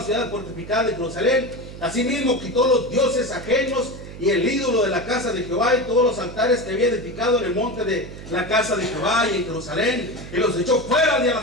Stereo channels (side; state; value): right; noise; hum, 13 dB below the sound